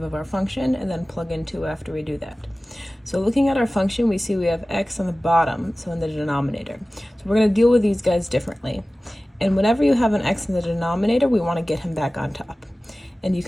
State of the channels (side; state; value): both; normal; correlation 0.97